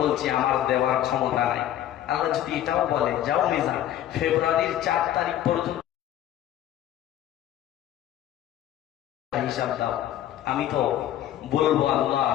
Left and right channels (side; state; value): right; quieter; 12.0 dB